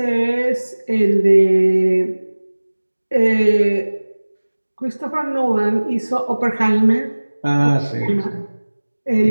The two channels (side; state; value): both; inverted; correlation -1.00